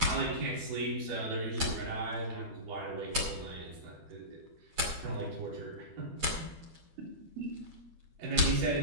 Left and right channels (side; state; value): left; late; 12 ms